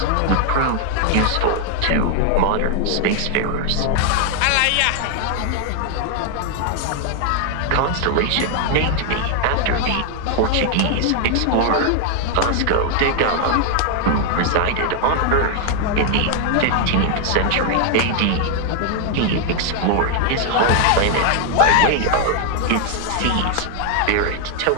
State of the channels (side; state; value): both; different; correlation 0.00